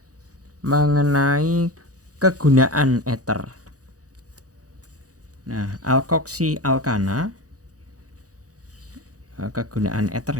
mengenai kegunaan ether. Nah, alkoksi alkana, kegunaan ether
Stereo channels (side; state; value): left; late; 0.67 ms